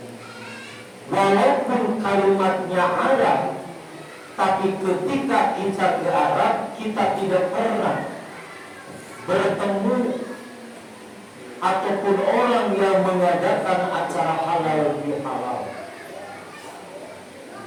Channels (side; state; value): both; identical; correlation 1.00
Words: Walaupun kalimatnya Arab, tapi ketika kita ke Arab, kita tidak pernah bertemu ataupun orang yang mengadakan acara halal bihalal.